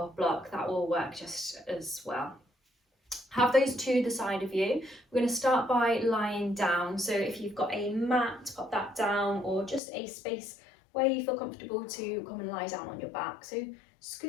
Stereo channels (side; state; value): right; drops out; at 9.8 s